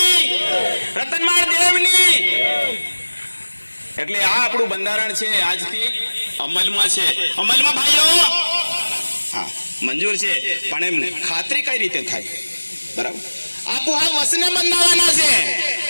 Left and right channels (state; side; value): inverted; both; correlation -1.00